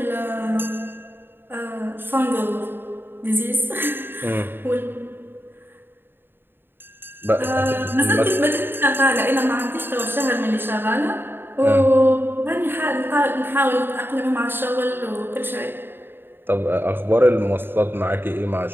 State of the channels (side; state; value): left; late; 0.10 ms